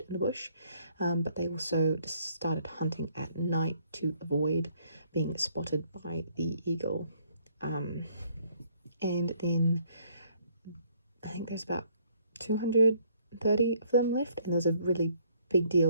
in the bush, but they also started hunting at night to avoid being spotted by the eagle. And then I think there's about 230 of them left, and there's a really big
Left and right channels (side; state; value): both; inverted; correlation -0.65